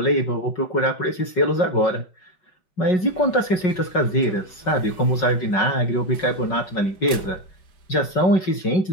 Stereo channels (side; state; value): right; late; 5.4 ms